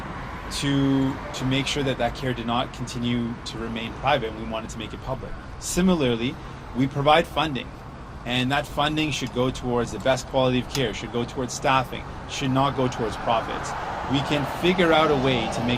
to make sure that care did not continue to remain private, and we wanted to make it public. Similarly, we provide funding, and that funding should go towards the best quality of care, should go towards staffing, should not go towards profits. We can figure out a way to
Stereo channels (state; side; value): identical; both; correlation 1.00